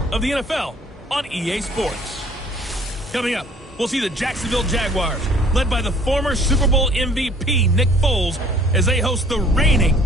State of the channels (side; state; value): both; normal; correlation 0.55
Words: of the NFL on EA Sports. Coming up, we'll see the Jacksonville Jaguars, led by the former Super Bowl MVP Nick Foles, as they host the reigning